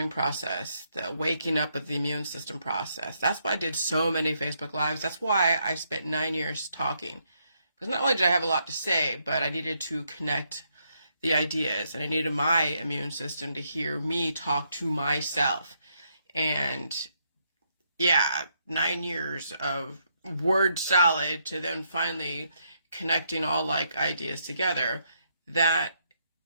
process, the waking up of the immune system process. That's why I did so many Facebook Lives. That's why I spent 9 years talking. Because not only did I have a lot to say, but I needed to connect the ideas, and I needed my immune system to hear me talk to myself. And yeah, 9 years of word salad to then finally connecting all like ideas together. That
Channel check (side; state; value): both; inverted; correlation -0.76